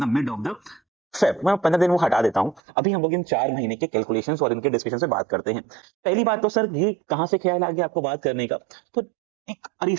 the mid of the Feb. मैं 15 दिन वो हटा देता हूँ, अभी हम लोग इन 4 महीने के कैलकुलेशंस और इनके डिस्कशन से बात करते हैं। पहली बात तो सर ये कहाँ से ख्याल आ गया आपको बात करने का? तो एक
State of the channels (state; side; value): drops out; left; at 2.6 s